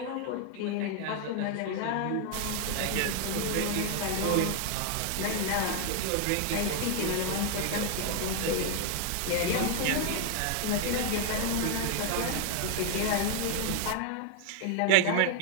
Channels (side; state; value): both; different; correlation 0.00